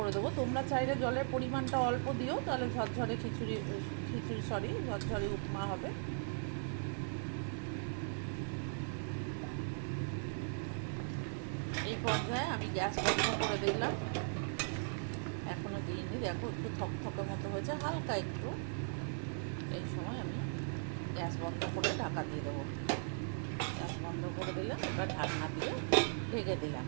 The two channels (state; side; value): silent; left; digital silence